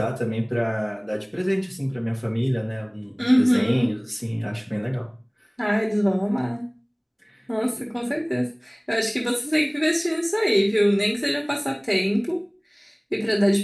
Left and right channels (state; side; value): identical; both; correlation 1.00